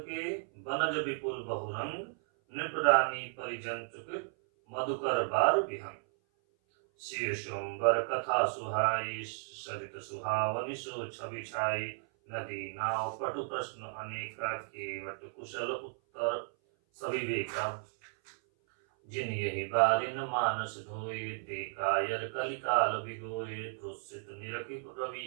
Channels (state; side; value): silent; left; 55 dB below the other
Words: के, बनज विपुल बहुरंग, नृपरानी परिजन चुकित, मधुकर बार विहंग। सिय स्वयंवर कथा सुहाई, सरित सुहावनि सो छवि छाई। नदी नाव पटु प्रश्न अनेका, केवट कुशल उत्तर सविवेका। जिन यही बारिन मानस धोए, ते कायर कलिकाल बिगोए। तुसित निरखि